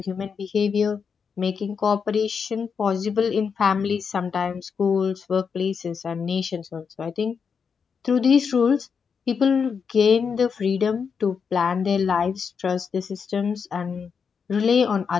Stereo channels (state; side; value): quieter; right; 6.1 dB